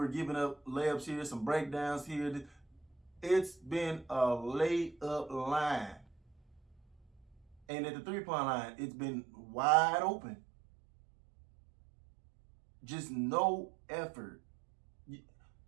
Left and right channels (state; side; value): drops out; left; at 7.6 s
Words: giving up layups here, some breakdowns here. It's been a laid up line. And at the 3-point line, it's been wide open. Just no effort.